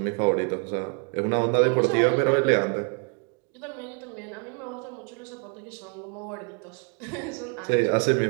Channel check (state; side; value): quieter; left; 38.0 dB